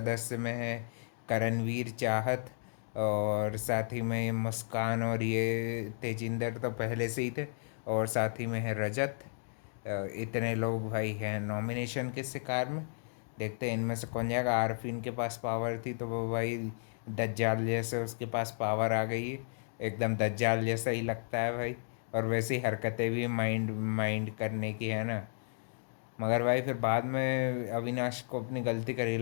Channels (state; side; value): silent; right; digital silence